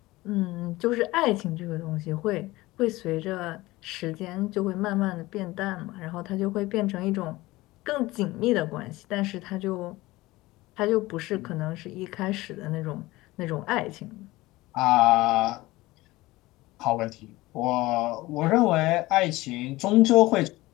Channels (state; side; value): quieter; right; 19.4 dB